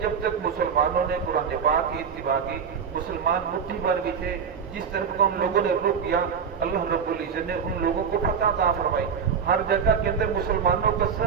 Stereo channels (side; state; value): left; quieter; 6.8 dB